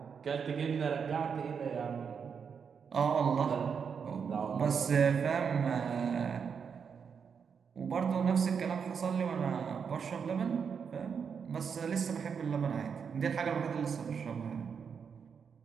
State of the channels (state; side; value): quieter; left; 6.5 dB